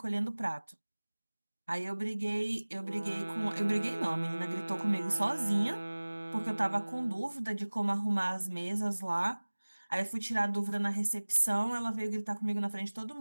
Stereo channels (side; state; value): both; inverted; correlation -1.00